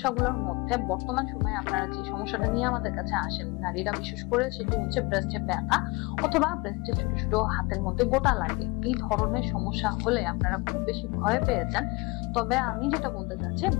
মধ্যে বর্তমান সময়ে আপনারা যে সমস্যাটা নিয়ে আমাদের কাছে আসেন নারীরা বিশেষ করে, সেটি হচ্ছে ব্রেস্টে ব্যথা অথবা ব্রেস্টে ছোট ছোট হাতের মধ্যে গোটা লাগে। এই ধরনের সমস্যা হলে আপনারা খুব বেশি ভয় পেয়ে যান। তবে আমি যেটা বলতে চাচ্ছি,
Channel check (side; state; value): right; quieter; 25.7 dB